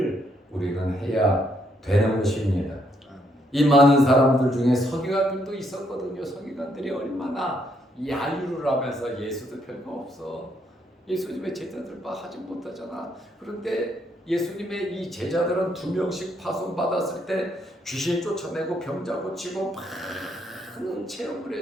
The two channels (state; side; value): normal; both; correlation 0.73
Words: 우리는 해야 되는 것입니다. 이 많은 사람들 중에 서기관들도 있었거든요. 서기관들이 얼마나 야유를 하면서 예수도 별거 없어. 예수님의 제자들 하지 못하잖아. 그런데 예수님의 이 제자들은 2명씩 파송받았을 때 귀신 쫓아내고 병자 고치고 많은 체험을